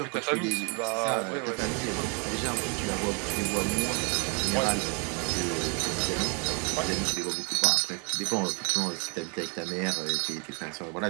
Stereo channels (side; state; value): left; quieter; 35.6 dB